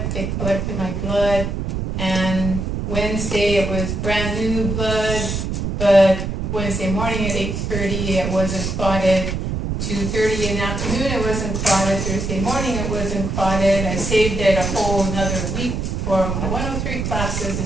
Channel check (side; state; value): right; noise; rumble, 3 dB below the sound